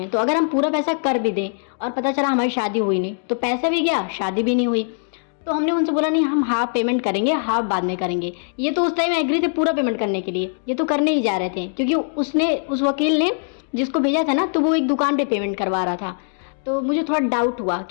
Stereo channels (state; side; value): silent; right; digital silence